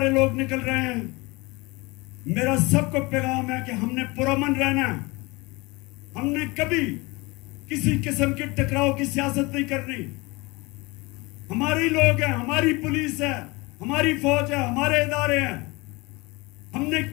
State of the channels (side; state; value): right; quieter; 24.5 dB